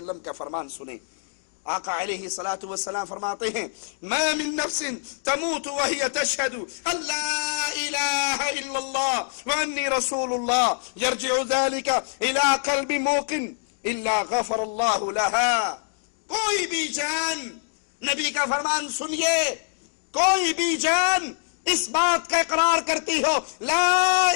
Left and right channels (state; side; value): silent; right; digital silence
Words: کا فرمان سنیں. آقا علیہ الصلوۃ والسلام فرماتے ہیں ما من نفس تموت وهي تشهد ان لا اله الا الله واني رسول الله يرجع ذلك الى قلب موقن الا غفر الله لها. کوئی بھی جان، نبی کا فرمان سنیے، کوئی بھی جان اس بات کا اقرار کرتی ہو لا